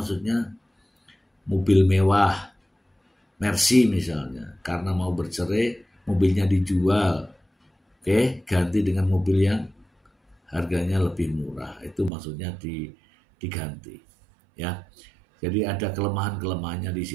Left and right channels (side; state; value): left; drops out; at 12.1 s